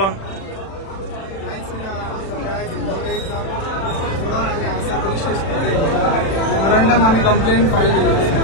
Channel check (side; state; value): right; late; 36 ms